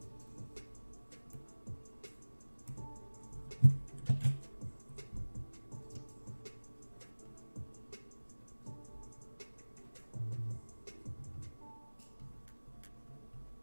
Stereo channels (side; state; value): both; inverted; correlation -1.00